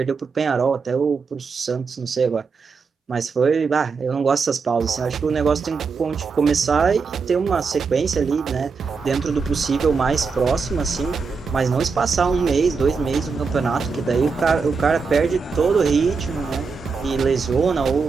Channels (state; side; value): quieter; left; 5.0 dB